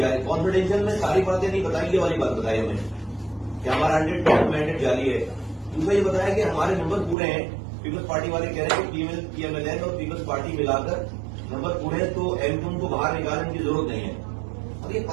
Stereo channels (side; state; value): left; drops out; at 7.2 s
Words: कॉन्फिडेंशियल में सारी बातें नहीं बताई, ये वाली बात बताई हमें कि हमारा 100% मैंडेट जारी है। दूसरा ये बताया कि हमारे नंबर पूरे हैं। पीपल्स पार्टी वाले कह रहे हैं कि पीएमएलएन और पीपल्स पार्टी मिलाकर नंबर पूरे हैं, तो एमक्यूएम को बाहर निकालने की जरूरत नहीं है। अब ये